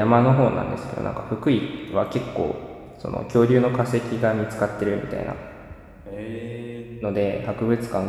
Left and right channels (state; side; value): identical; both; correlation 1.00